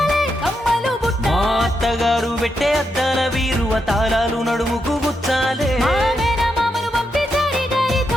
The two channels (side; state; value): both; normal; correlation 0.83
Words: కమ్మలు బుట్టలు. మా అత్తగారు పెట్టే అద్దాల వీరు తాళాలు నడుముకు గుచ్చాలే. మా మేనమామను పంపి సరి